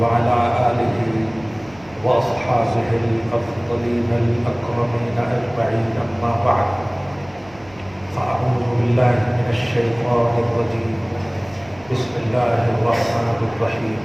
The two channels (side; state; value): right; noise; rumble, 25 dB below the sound